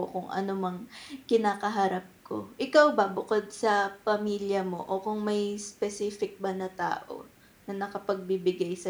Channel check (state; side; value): identical; both; correlation 1.00